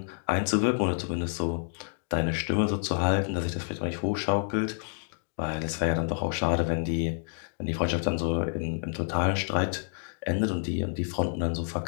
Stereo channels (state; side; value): silent; right; digital silence